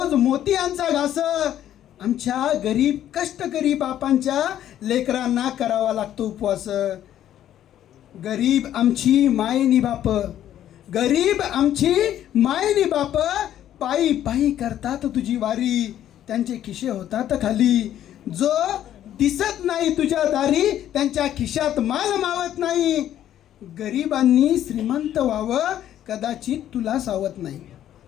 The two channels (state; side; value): quieter; right; 11.4 dB